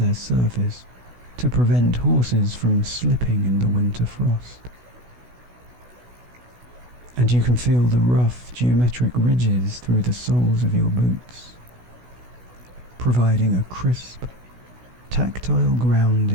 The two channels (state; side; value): late; left; 16 ms